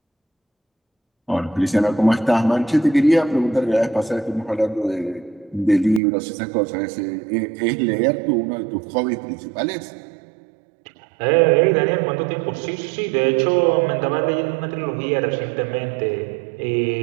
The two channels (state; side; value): drops out; left; at 6.0 s